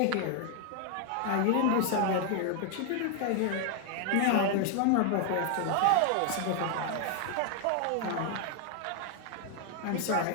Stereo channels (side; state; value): both; different; correlation 0.00